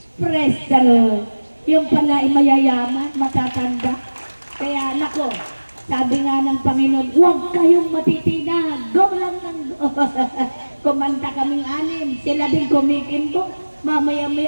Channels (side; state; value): both; inverted; correlation -1.00